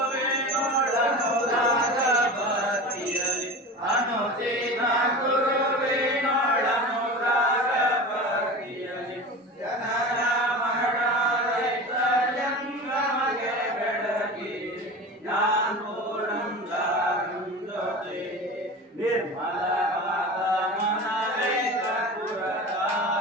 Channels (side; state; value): both; normal; correlation 0.32